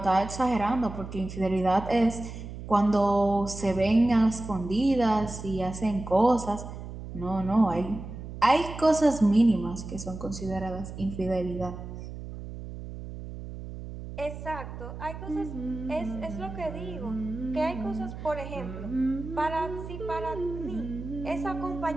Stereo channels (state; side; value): noise; right; hum, 10 dB below the sound